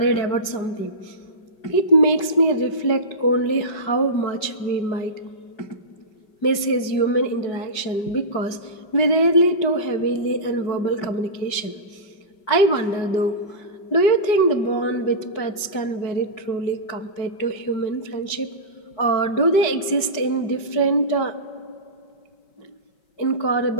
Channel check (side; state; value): right; late; 5.2 ms